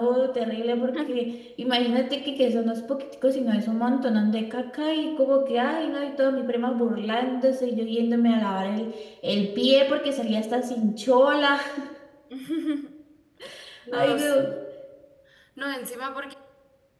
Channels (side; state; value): both; identical; correlation 1.00